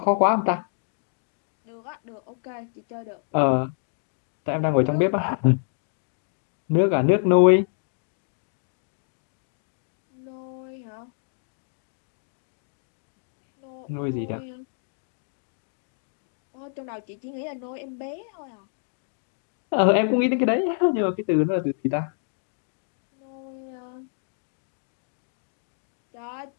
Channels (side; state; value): right; silent; digital silence